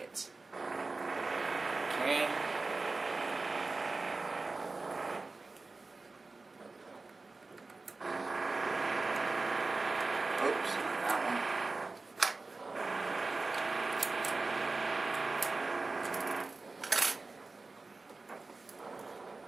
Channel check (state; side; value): quieter; left; 3.6 dB